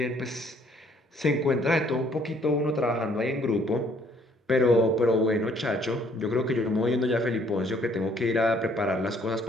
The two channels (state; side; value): normal; both; correlation 0.63